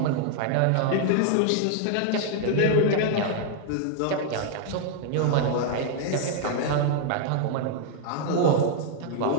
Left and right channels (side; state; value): both; different; correlation 0.00